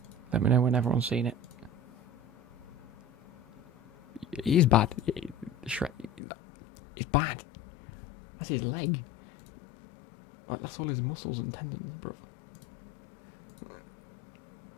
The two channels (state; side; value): drops out; right; at 6.2 s